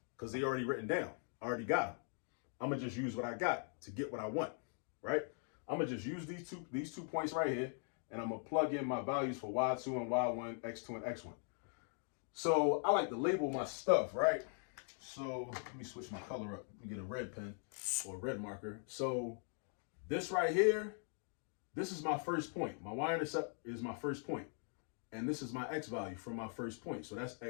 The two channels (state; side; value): silent; right; 50 dB below the other